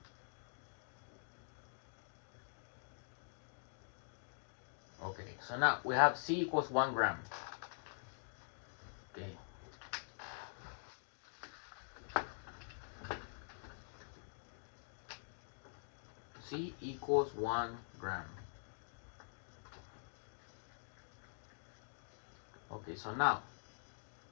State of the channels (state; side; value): silent; right; digital silence